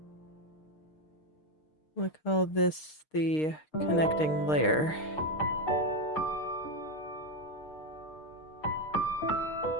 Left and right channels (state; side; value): late; right; 6.5 ms